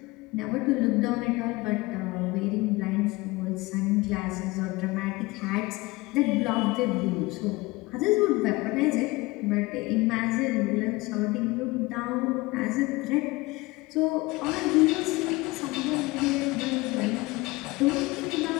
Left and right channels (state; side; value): quieter; right; 22.1 dB